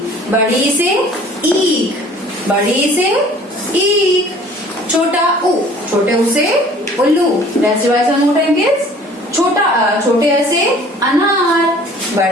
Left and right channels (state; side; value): normal; both; correlation 0.51